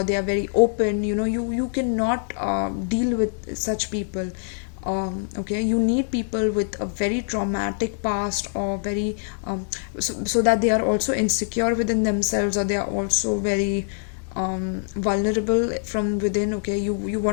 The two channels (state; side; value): silent; right; digital silence